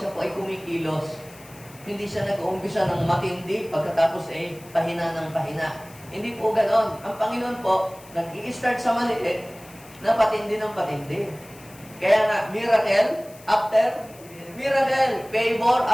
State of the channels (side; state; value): left; noise; hiss, 22 dB below the sound